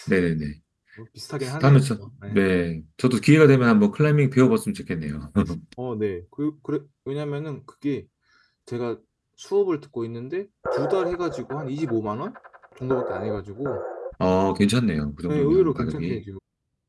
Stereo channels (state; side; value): identical; both; correlation 1.00